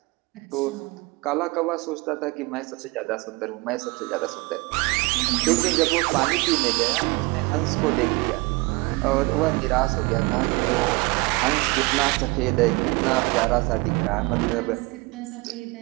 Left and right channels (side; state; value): left; quieter; 25.2 dB